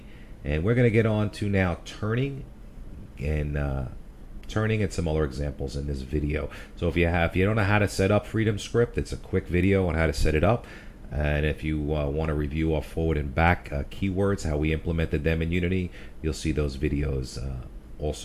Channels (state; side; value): identical; both; correlation 1.00